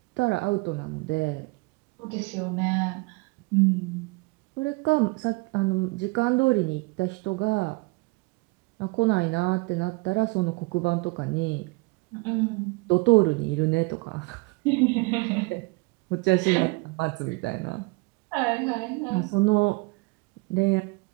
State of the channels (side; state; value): left; quieter; 26.9 dB